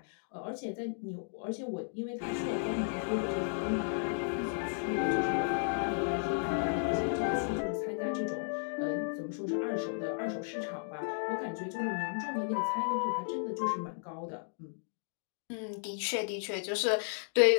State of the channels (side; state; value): right; silent; digital silence